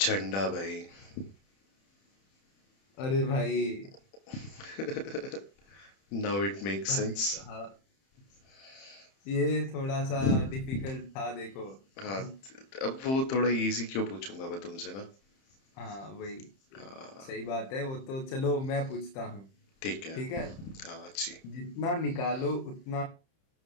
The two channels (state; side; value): late; right; 31 ms